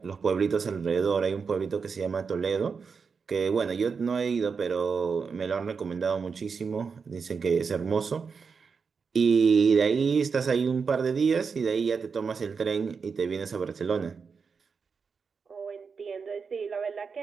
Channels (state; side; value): quieter; left; 5.5 dB